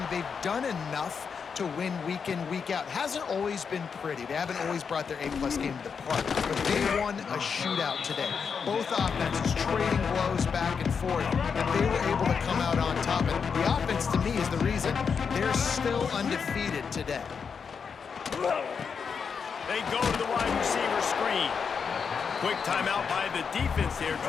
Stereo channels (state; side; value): quieter; right; 6.1 dB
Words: they've done enough to win week in, week out. Hasn't always been pretty. They haven't always brought their A-plus game to the park, but they won a shootout today. Both offenses trading blows back and forth, and they were able to come out on top. And the offense, to me, is the reason they're still undefeated today. They go to the wide receiver screen. Quick timeout by the defense here,